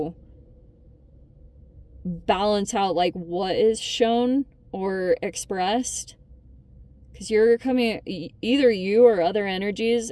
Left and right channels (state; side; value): identical; both; correlation 1.00